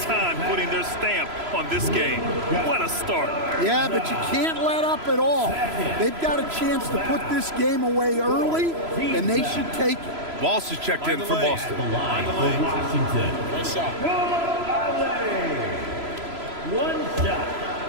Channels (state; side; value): late; left; 3.0 ms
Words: time putting their stamp on this game. What a start. Yeah, but you can't let up at all. They've got a chance to put this game away early, and they should take it. Walsh is checked in for Boston. The line for Washington. Nice shot. One shot.